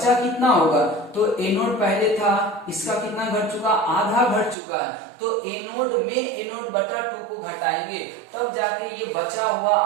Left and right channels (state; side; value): drops out; left; at 4.5 s